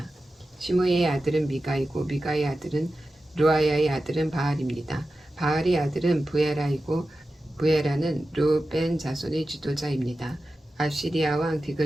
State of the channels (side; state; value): both; normal; correlation 0.93